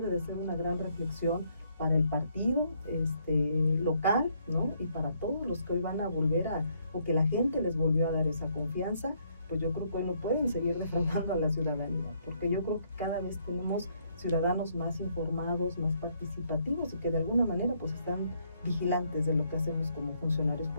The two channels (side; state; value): both; inverted; correlation -0.70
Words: de ser una gran reflexión para el partido local, ¿no?, y para todos los que hoy van a volver o que la gente les volvió a dar esa confianza. Pues yo creo que hoy no pueden seguir defraudando a la ciudadanía, porque yo creo que cada vez tenemos ciudadanos más informados, más participativos y que de alguna manera pues están vigilantes de lo que hacemos como funcionarios